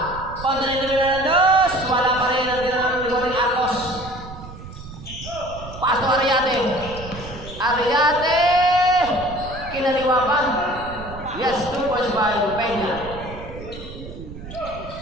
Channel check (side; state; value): right; noise; rumble, 13 dB below the sound